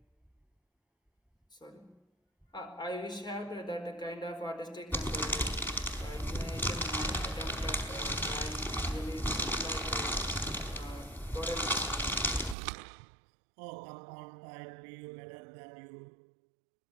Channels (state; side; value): drops out; left; at 12.6 s